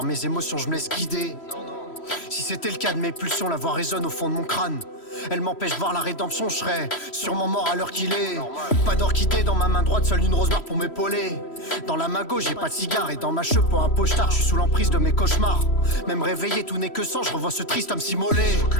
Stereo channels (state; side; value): late; right; 3.1 ms